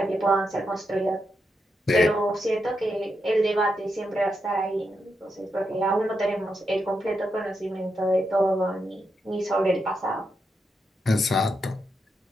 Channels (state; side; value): normal; both; correlation 0.84